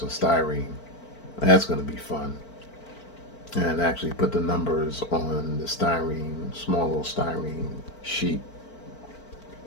styrene. That's going to be fun. And actually put the numbers on the styrene, small little styrene sheet.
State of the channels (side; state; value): right; late; 4.5 ms